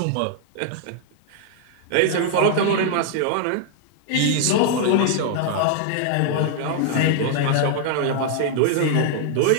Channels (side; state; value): both; different; correlation -0.01